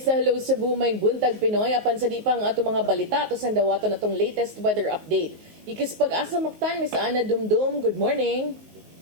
sa Hello Cebu, may buntag Pinoy. Apan sa di pang ato mga balita, ato sa dawato na itong latest weather update. Ikis pag-asa maktan, Miss Ana Dumdum, good morning.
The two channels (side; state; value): left; late; 19 ms